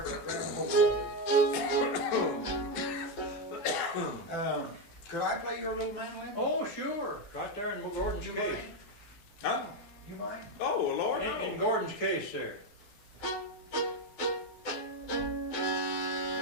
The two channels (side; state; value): right; late; 12 ms